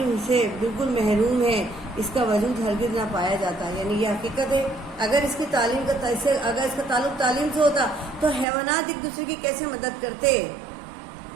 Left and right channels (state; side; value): drops out; left; at 8.5 s